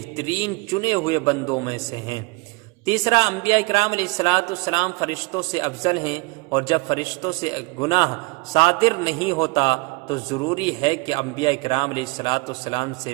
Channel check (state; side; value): quieter; left; 26.5 dB